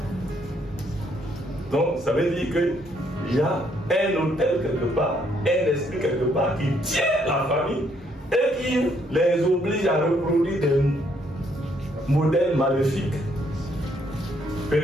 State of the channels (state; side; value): normal; both; correlation 0.70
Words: Donc, ça veut dire qu'il y a un hôtel quelque part, un esprit quelque part qui tient la famille et qui les oblige à reproduire des modèles maléfiques